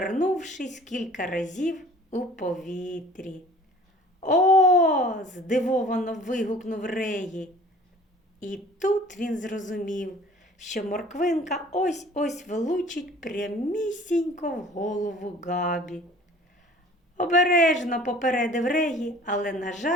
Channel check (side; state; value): both; normal; correlation 0.48